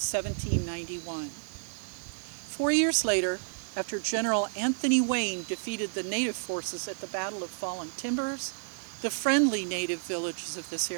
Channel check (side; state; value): left; silent; 57 dB below the other